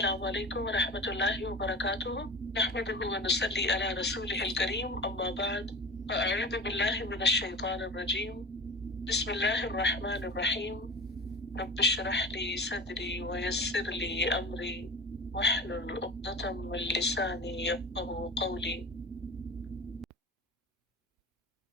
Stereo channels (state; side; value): normal; both; correlation 0.34